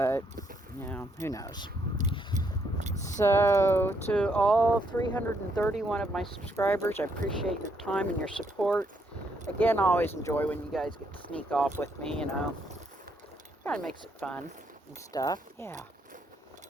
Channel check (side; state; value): both; normal; correlation 0.74